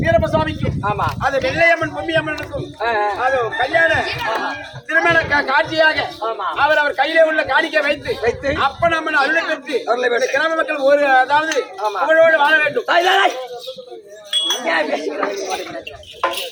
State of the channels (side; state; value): both; identical; correlation 1.00